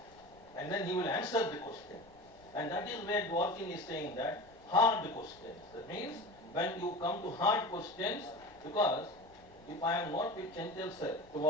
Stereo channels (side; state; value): left; noise; rumble, 26 dB below the sound